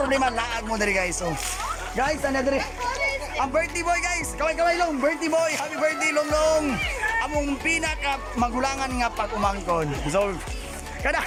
laag mo diri guys. So, guys, ano diri? Ang birthday boy guys, kaway long, birthday boy, happy birthday long. Among pinaka magulangan nga pag-umangkon. So, kada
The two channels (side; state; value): both; identical; correlation 1.00